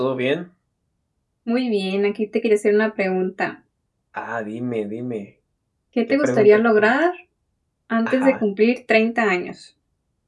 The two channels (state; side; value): identical; both; correlation 1.00